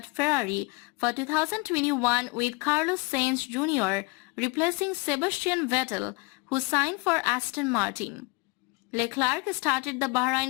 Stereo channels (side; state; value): right; quieter; 28.5 dB